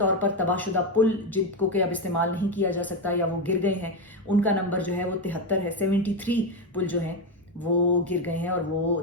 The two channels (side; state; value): both; normal; correlation 0.11